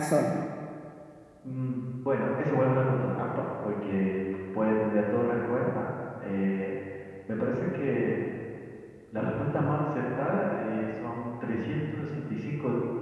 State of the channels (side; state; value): both; identical; correlation 1.00